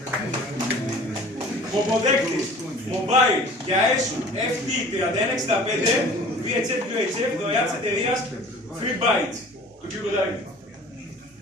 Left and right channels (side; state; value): both; normal; correlation 0.46